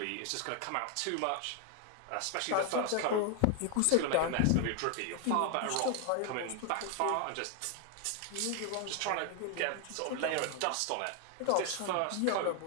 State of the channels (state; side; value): different; both; correlation 0.01